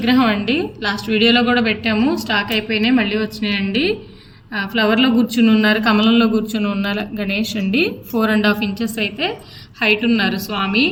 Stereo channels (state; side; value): identical; both; correlation 1.00